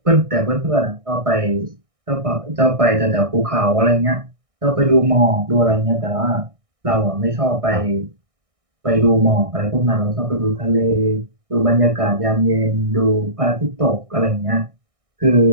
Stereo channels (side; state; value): left; late; 1.6 ms